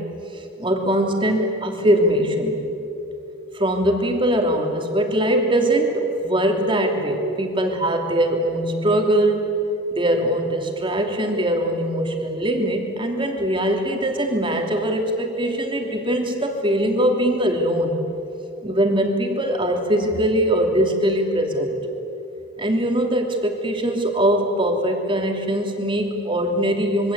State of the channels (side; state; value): both; normal; correlation 0.41